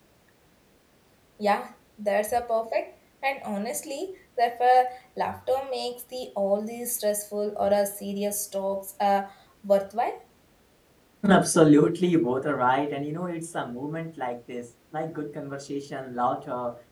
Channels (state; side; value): identical; both; correlation 1.00